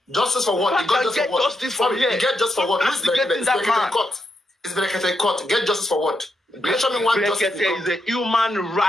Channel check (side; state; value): both; normal; correlation 0.83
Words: Justice for what? He got justice for what? Justice from here. He get justice for what? Who's Berekete? It's Berekete in court. It's Berekete in court. Get justice for what? Mention me one justice. Berekete is a human